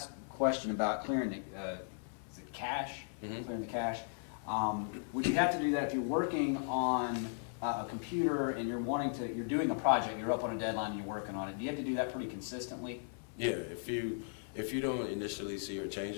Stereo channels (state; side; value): silent; right; 53 dB below the other